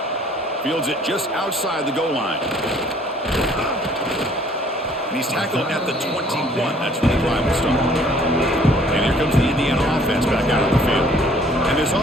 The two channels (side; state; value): both; normal; correlation 0.58